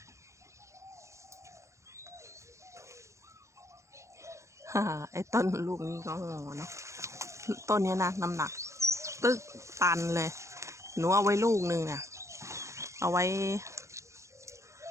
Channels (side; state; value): left; late; 0.14 ms